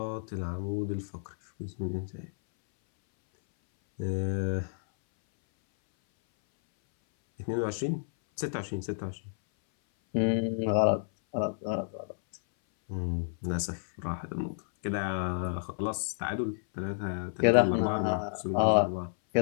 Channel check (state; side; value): silent; right; 57 dB below the other